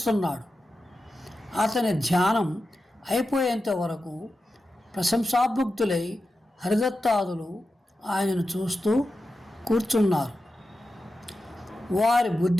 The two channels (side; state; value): both; normal; correlation 0.91